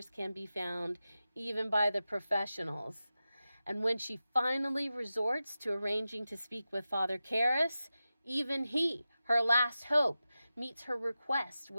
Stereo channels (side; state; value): both; inverted; correlation -0.93